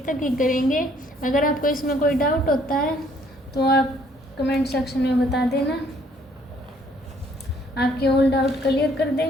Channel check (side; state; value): both; normal; correlation 0.63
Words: तक ही करेंगे। अगर आपको इसमें कोई डाउट होता है तो आप कमेंट सेक्शन में बता देना, आपके ऑल डाउट क्लियर कर